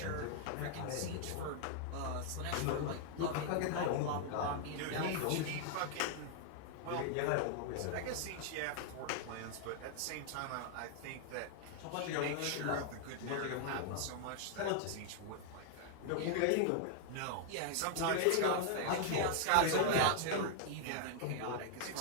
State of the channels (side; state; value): both; different; correlation 0.00